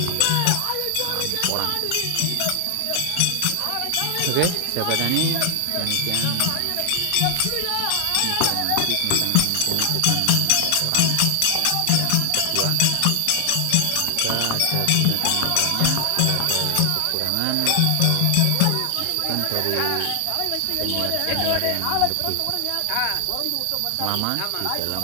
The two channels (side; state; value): both; different; correlation 0.00